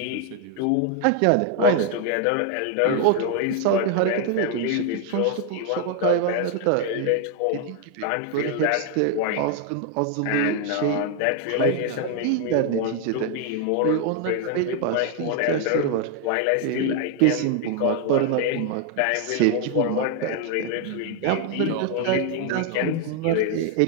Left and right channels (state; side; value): different; both; correlation 0.00